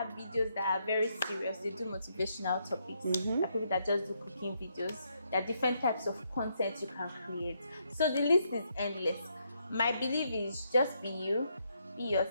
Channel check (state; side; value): inverted; both; correlation -0.76